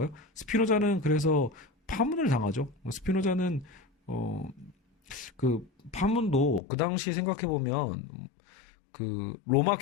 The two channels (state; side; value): drops out; right; at 6.6 s